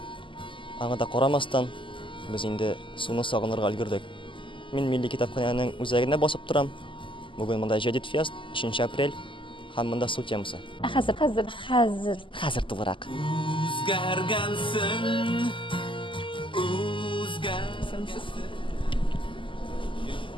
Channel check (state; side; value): late; right; 0.25 ms